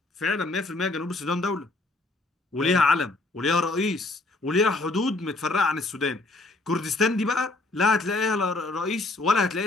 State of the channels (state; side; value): quieter; right; 3.1 dB